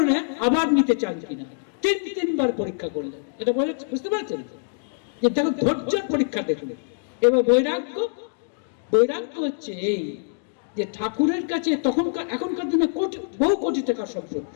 আবার নিতে চান কিনা, 3বার পরীক্ষা করলেন। এটা বুঝতে পারছেন যে দেখো ধৈর্যের পরীক্ষা দেখলেন। এবার বৈরাগ্য হচ্ছে এই যে ঠাকুরের কাছে এখনকার দিনে বহু কোটি টাকার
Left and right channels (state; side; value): silent; right; digital silence